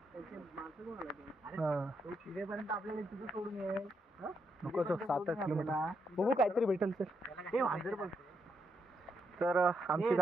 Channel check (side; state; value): both; normal; correlation 0.80